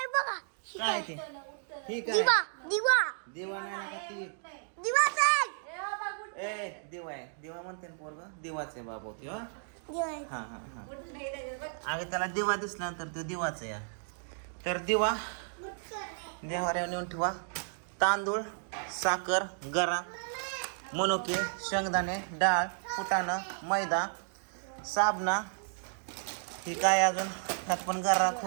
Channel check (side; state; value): left; silent; digital silence